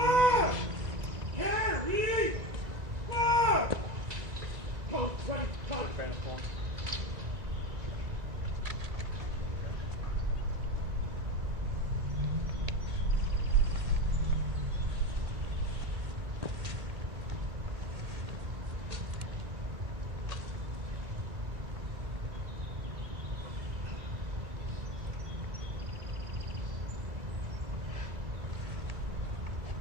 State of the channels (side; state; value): left; late; 1.9 ms